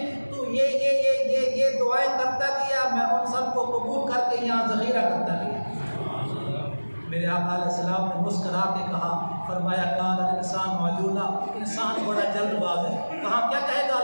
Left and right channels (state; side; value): inverted; both; correlation -1.00